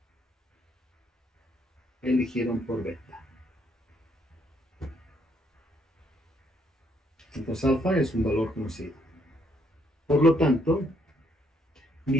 eligieron por beta. Entonces alfa es un valor conocido. Por lo tanto,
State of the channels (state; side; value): normal; both; correlation 0.71